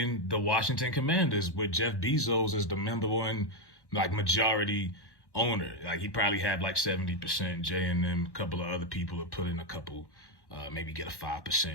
the Washington Commanders with Jeff Bezos as the number one, like, majority owner. Like, he probably had like 70%. Jay and them, a couple of other people have put in a couple, maybe get a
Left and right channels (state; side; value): late; right; 1.1 ms